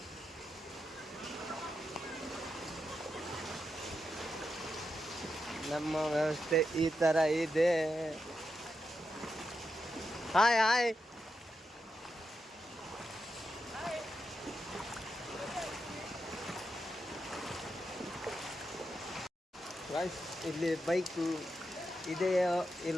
ನಮ್ಮ ವ್ಯವಸ್ಥೆ ಈ ಥರ ಇದೆ. Hi hi. ಗಾಯ್ಸ್ ಇಲ್ಲಿ ಬೈಕು ಇದೆಯೋ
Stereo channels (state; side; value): normal; both; correlation 0.86